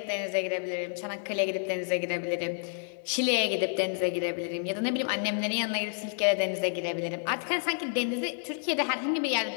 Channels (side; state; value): right; silent; digital silence